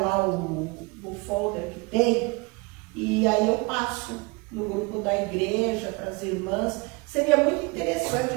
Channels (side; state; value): left; quieter; 27.1 dB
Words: lá o folder que tem, e aí eu passo no grupo da igreja para as irmãs. Seria muito interessante